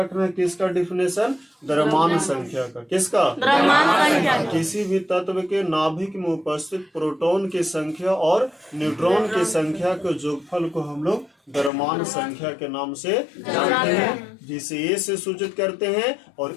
है किसका डिफिनेशन? द्रव्यमान संख्या का। किसका? द्रव्यमान संख्या। किसी भी तत्व के नाभिक में उपस्थित प्रोटॉन की संख्या और न्यूट्रॉन की संख्या के जोगफल को हम लोग द्रव्यमान संख्या के नाम से जानते हैं, जिसे ए से सूचित करते हैं। और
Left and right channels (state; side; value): drops out; right; at 11.7 s